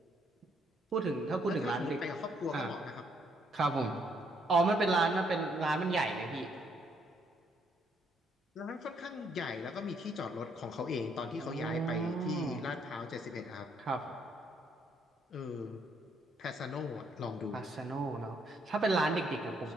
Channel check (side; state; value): both; normal; correlation 0.70